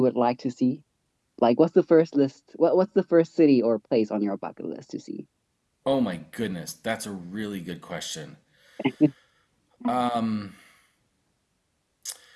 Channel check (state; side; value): identical; both; correlation 1.00